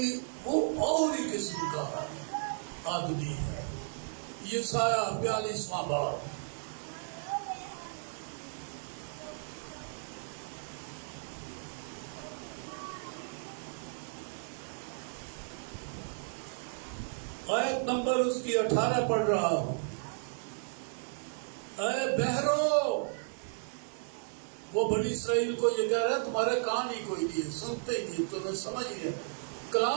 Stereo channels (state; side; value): silent; left; 55 dB below the other